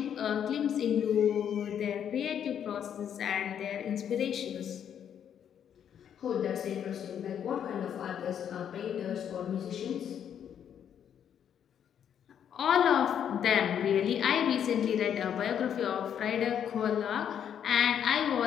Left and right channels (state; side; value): quieter; right; 8.9 dB